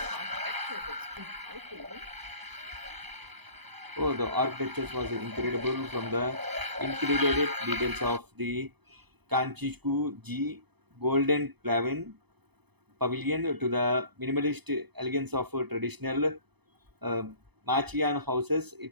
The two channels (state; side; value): late; left; 0.98 ms